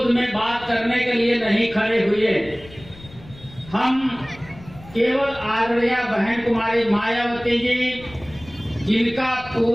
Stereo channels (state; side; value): noise; left; rumble, 20 dB below the sound